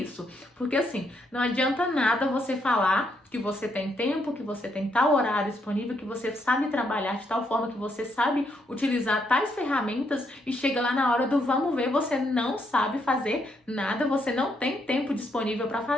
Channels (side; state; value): both; normal; correlation 0.76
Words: Porque assim, não adianta nada você falar que você tem tempo, que você tem tal horário disponível, que você sabe trabalhar de tal forma, que você sabe utilizar tais ferramentas e chega lá na hora do vamos ver, você não sabe fazer nada, você não tem tempo disponível para